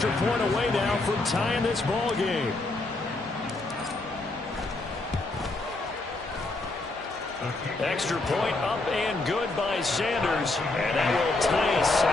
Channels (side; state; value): right; quieter; 3.0 dB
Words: point away now from tying this ball game. Extra point up and good by Sanders. And that will tie us